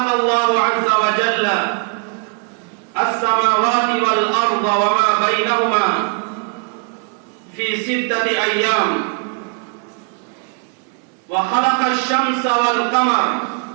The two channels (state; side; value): quieter; left; 38.5 dB